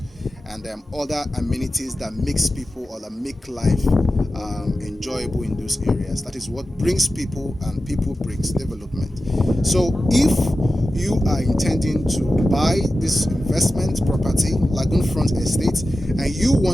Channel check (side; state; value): both; normal; correlation 0.93